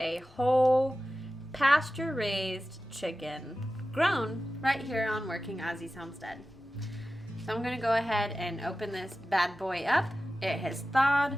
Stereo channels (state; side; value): normal; both; correlation 0.94